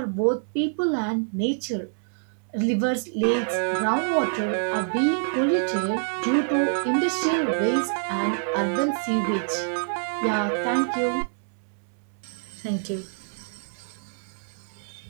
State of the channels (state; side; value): silent; left; digital silence